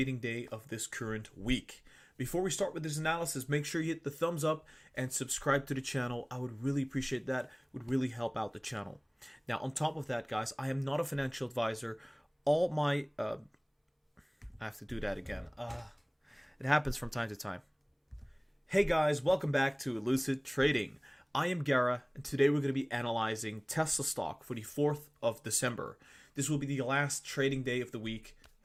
day of this current week. Before we start with this analysis, make sure you hit the thumbs up and subscribe to the channel. I would really appreciate that. It would really help out the channel. Now, on top of that, guys, I am not a financial advisor. All my... I have to do that again. It happens from time to time. Hey guys, welcome back to Lucid Trading. I am Gara, and today we're going to be analyzing Tesla stock for the 4th of December. This will be the last trading day of the week,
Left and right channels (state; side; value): identical; both; correlation 1.00